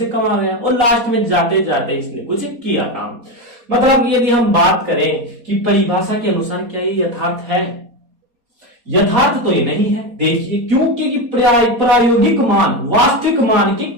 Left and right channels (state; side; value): late; left; 4.2 ms